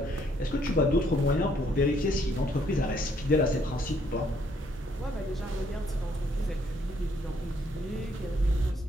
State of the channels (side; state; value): both; normal; correlation 0.68